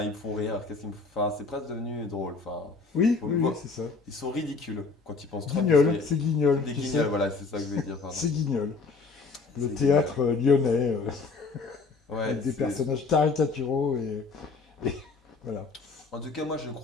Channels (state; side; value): quieter; right; 4.3 dB